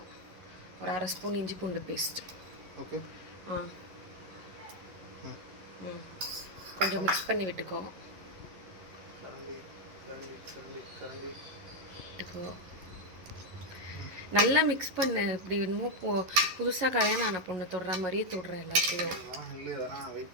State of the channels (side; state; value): left; late; 11 ms